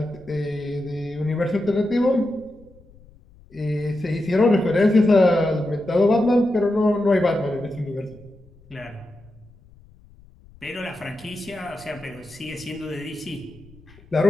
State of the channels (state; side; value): noise; left; rumble, 25 dB below the sound